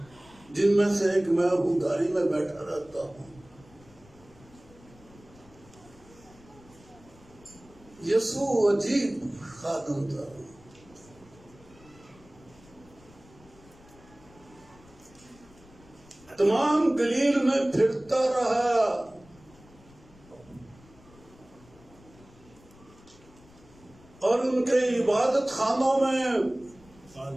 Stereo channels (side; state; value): left; noise; rumble, 25 dB below the sound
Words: جن میں سے ایک میں ہوں، گاڑی میں بیٹھا رہتا ہوں. یسوع عجیب خادم تھا. تمام گلیل میں پھرتا رہا. اور ان کے عبادت خانوں میں